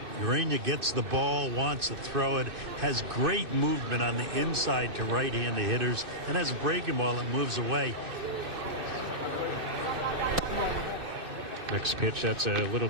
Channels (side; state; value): left; late; 2.6 ms